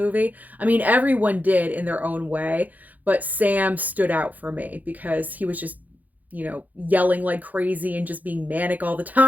I mean, everyone did in their own way, but Sam stood out for me because he was just, yelling like crazy and just being manic all the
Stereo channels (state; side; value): late; left; 0.081 ms